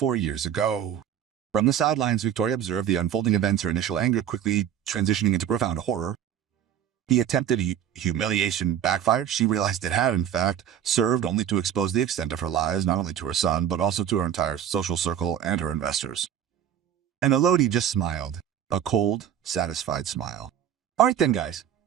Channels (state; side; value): quieter; left; 9.7 dB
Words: years ago." From the sidelines, Victoria observed the unfolding events, her initial anger quickly transitioning into profound horror. The attempted humiliation backfired. She realized it had, in fact, served only to expose the extent of her lies, not only to her son, but also to her entire social circle and her investors. And Elodie just smiled, a cold, satisfied smile. "All right then, guys,"